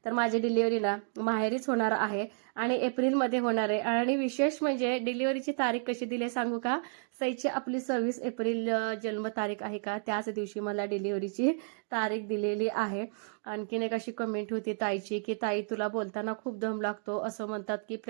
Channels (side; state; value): left; silent; 57 dB below the other